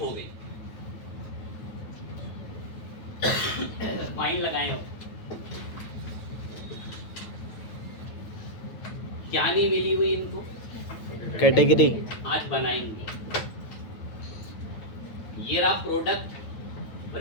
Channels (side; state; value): right; late; 9.0 ms